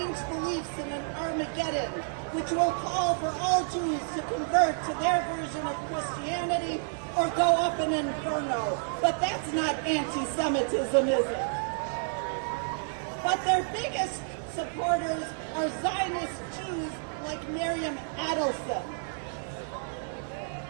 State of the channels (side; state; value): left; silent; digital silence